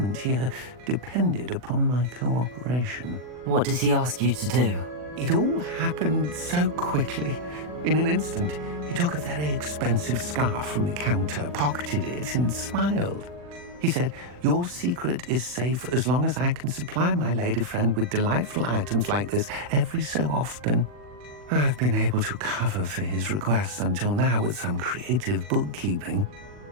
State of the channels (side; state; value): left; late; 40 ms